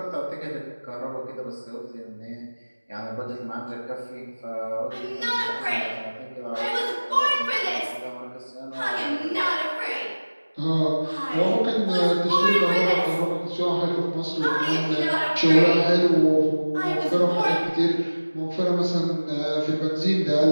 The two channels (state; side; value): inverted; both; correlation -1.00